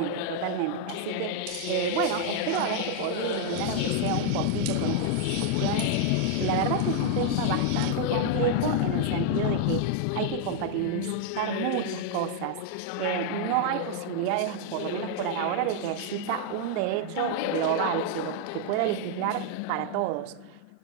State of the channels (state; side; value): different; both; correlation 0.00